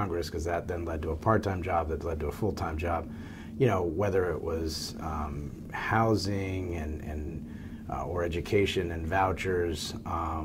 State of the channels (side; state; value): both; identical; correlation 1.00